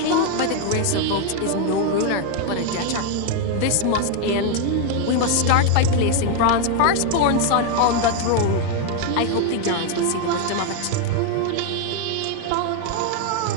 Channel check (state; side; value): different; both; correlation 0.01